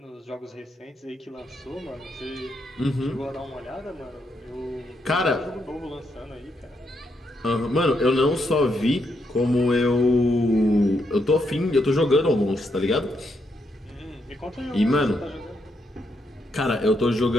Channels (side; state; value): both; normal; correlation 0.78